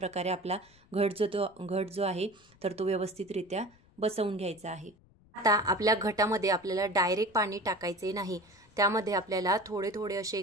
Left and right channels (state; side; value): noise; left; rumble, 29 dB below the sound